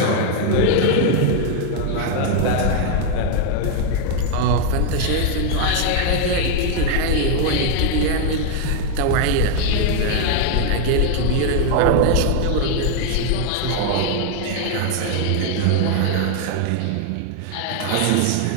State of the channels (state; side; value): different; both; correlation 0.00